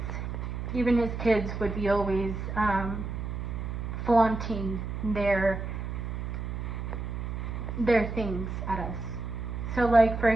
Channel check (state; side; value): noise; right; hum, 5 dB below the sound